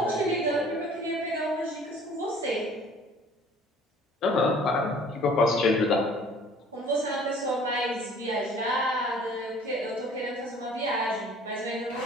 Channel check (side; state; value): both; normal; correlation 0.51